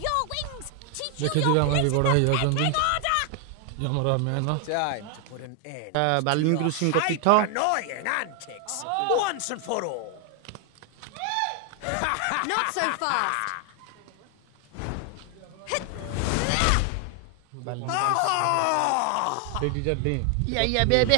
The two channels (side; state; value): both; different; correlation 0.00